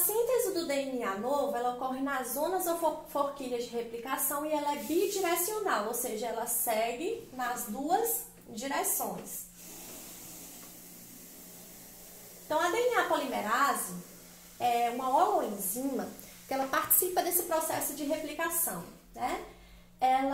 do DNA novo, ela ocorre nas zonas ou forquilhas de replicação e ela é bidirecional, ou seja, ela segue nas duas direções. Então, a DNA polimerase é uma holoenzima que ela participa desse processo de replicação, né?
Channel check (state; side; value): identical; both; correlation 1.00